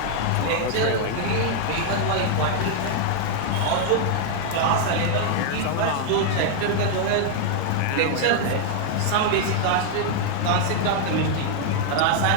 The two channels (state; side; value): different; both; correlation 0.00